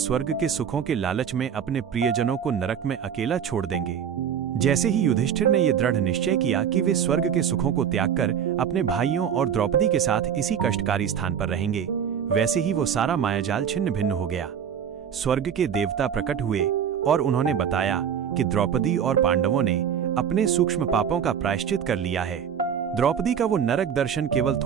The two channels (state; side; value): quieter; left; 8.3 dB